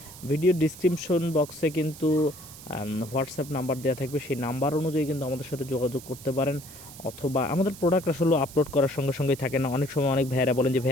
ভিডিও ডিসক্রিপশন বক্সে কিন্তু হোয়াটসঅ্যাপ নাম্বার দেওয়া থাকবে। সেই নাম্বার অনুযায়ী কিন্তু আমাদের সাথে যোগাযোগ করতে পারেন। অথবা আমাদের প্রোডাক্ট আসলে আপলোড করার সঙ্গে সঙ্গেই থাকে না। অনেক সময় অনেক ভাইয়েরা বলেন যে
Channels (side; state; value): right; noise; hiss, 16 dB below the sound